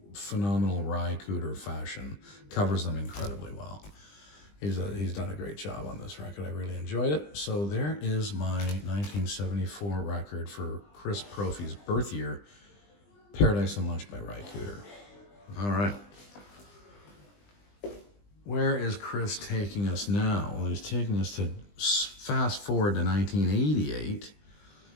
phenomenal Ry Cooder fashion. Covers them incredibly well. He's done a great job on this record. I really enjoyed it. So there is my 1974 record for Chris Propfe's birth year, Paradise and Lunch by Ry Cooder. All right. Where is Chris taking us now? Well, he's taking us to fast forward to 1988,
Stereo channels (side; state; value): right; late; 20 ms